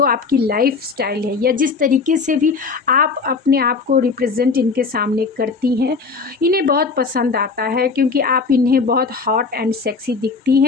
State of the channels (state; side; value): quieter; right; 4.7 dB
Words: आपकी लाइफ स्टाइल है, या जिस तरीके से भी आप अपने आप को रिप्रेजेंट इनके सामने करती हैं, इन्हें बहुत पसंद आता है, क्योंकि आप इन्हें बहुत हॉट एंड सेक्सी दिखती